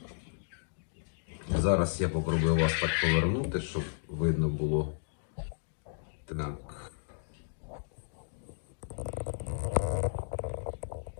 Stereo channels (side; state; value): right; silent; digital silence